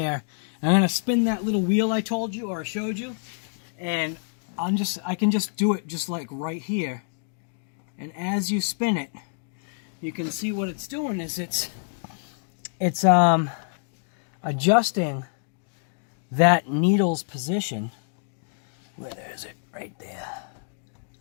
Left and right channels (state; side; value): silent; right; digital silence